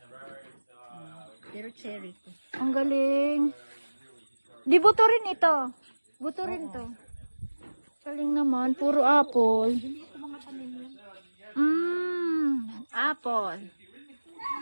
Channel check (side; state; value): both; inverted; correlation -1.00